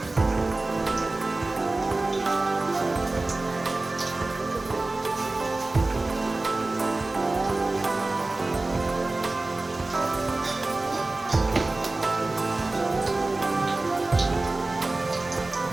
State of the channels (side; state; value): left; quieter; 3.1 dB